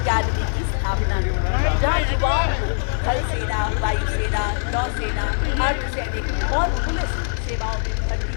की स्थापना की, जहाँ युवाओं को थल सेना, वायुसेना, नौसेना, अर्धसैनिक और पुलिस सेवाओं में भर्ती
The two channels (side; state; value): right; silent; digital silence